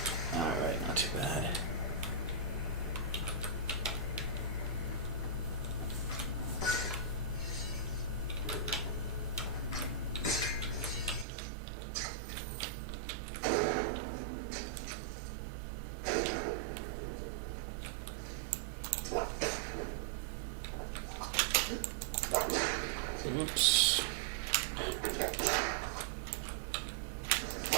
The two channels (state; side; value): drops out; left; at 11.2 s